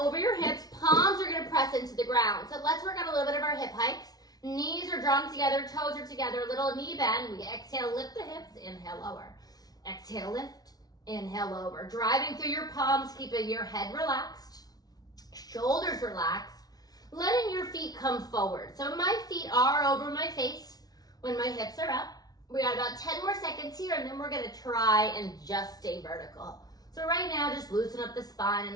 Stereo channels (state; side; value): late; right; 0.19 ms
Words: your hips. Palms are going to press into the ground. So let's work on a little bit of our hip hikes. Knees are drawn together. Toes are together. Little knee bend. We exhale, lift the hips. Inhale, lower. Exhale, lift. Inhale, lower. Driving through your palms, keeping your head relaxed. Shoulders relaxed. Letting your feet come forward. So my feet are over my face when my hips are up. We got about 10 more seconds here, and then we're going to try and just stay vertical. So right now, just loosen up the spine, a